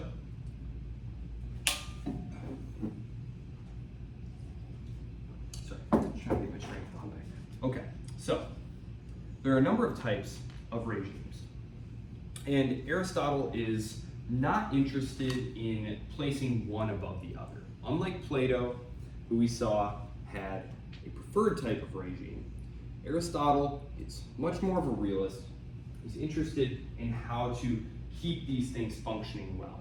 Sorry, trying to get my train of thought back. Okay, so. There are a number of types of regimes. And Aristotle is not interested in placing one above the other. Unlike Plato, who we saw had a preferred type of regime, Aristotle is much more of a realist. He's interested in how to keep these things functioning well.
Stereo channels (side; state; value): both; identical; correlation 1.00